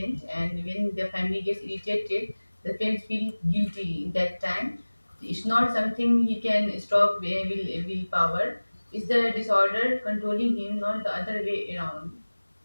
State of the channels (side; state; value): both; inverted; correlation -1.00